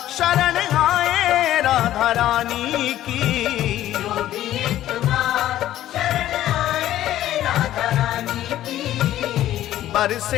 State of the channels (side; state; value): right; quieter; 13.2 dB